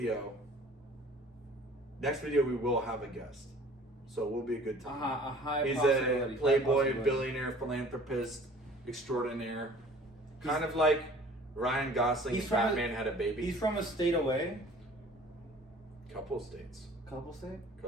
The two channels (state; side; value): normal; both; correlation 0.49